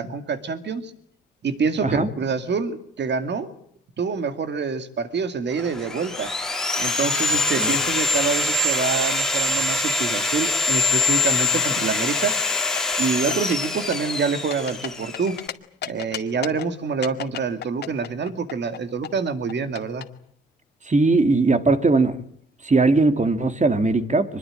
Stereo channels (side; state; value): both; normal; correlation 0.49